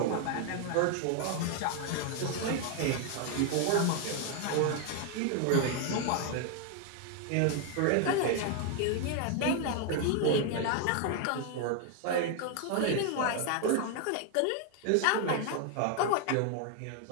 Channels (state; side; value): different; both; correlation 0.00